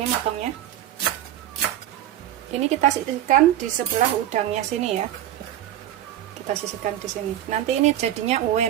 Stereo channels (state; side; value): quieter; left; 12.2 dB